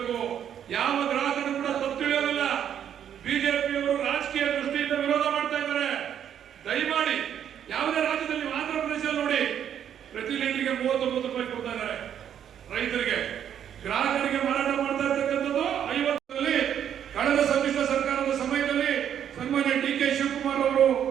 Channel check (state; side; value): quieter; left; 9.4 dB